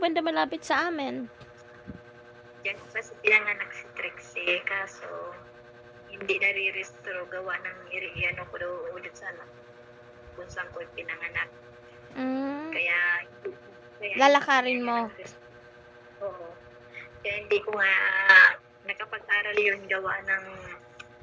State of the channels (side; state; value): both; identical; correlation 1.00